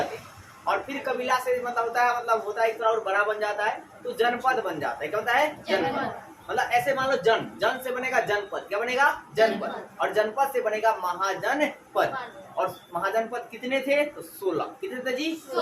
हैं, और फिर कबीला से मतलब होता है एक थोड़ा और बड़ा बन जाता है तो जनपद बन जाता है। क्या होता है? जनपद। मतलब ऐसे मान लो जन से बनेगा जनपद, क्या बनेगा? जनपद, और जनपद से बनेगा महाजनपद। और महाजनपद कितने थे? तो 16। कितने थे जी?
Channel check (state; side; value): identical; both; correlation 1.00